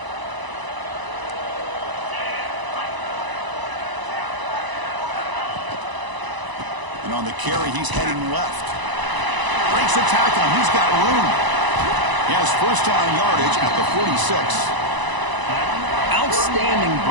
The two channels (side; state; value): left; late; 1.0 ms